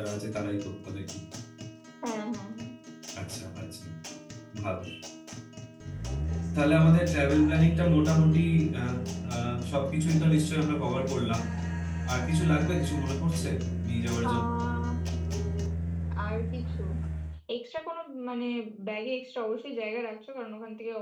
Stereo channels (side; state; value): both; identical; correlation 1.00